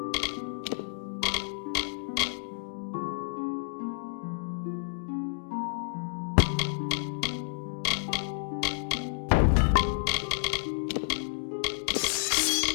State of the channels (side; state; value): right; silent; digital silence